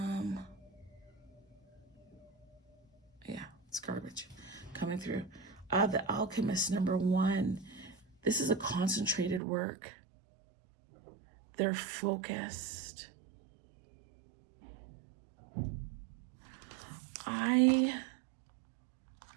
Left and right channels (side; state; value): left; drops out; at 9.4 s